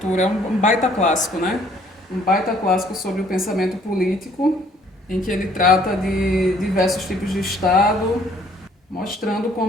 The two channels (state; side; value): normal; both; correlation 0.61